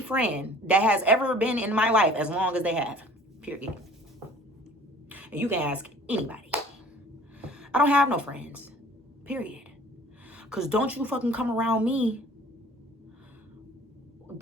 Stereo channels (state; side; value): normal; both; correlation 0.50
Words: that has ever been in my life as long as they have. Period. And you can ask anybody. I don't have no friends. Period. Because don't you fucking come around me.